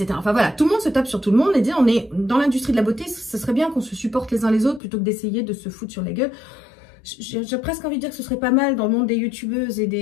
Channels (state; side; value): drops out; right; at 4.8 s